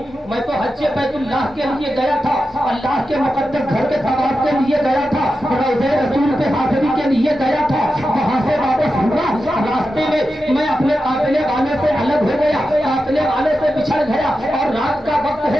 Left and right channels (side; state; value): both; normal; correlation 0.90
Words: मैं तो हज्जे बैतुल्लाह के लिए गया था, अल्लाह के मुकद्दस घर के तवाफ के लिए गया था, रोज़े रसूल पे हाजिरी के लिए गया था। वहाँ से वापस हुआ, रास्ते में मैं अपने काफिले वाले से अलग हो गया, काफिले वाले से बिछड़ गया और रात का वक्त